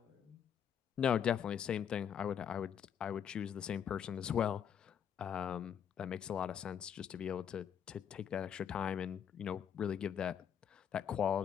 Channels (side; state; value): right; quieter; 8.4 dB